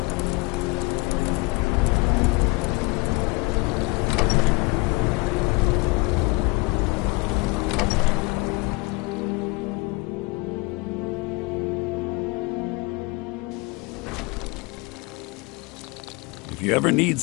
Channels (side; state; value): right; quieter; 25.5 dB